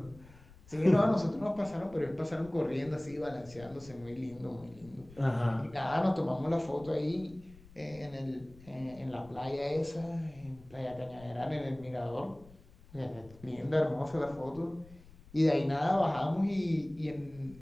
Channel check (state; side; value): noise; left; rumble, 22 dB below the sound